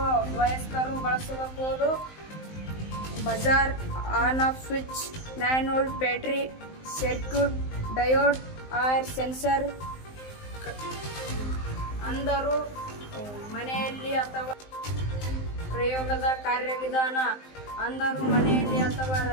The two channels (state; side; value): late; right; 19 ms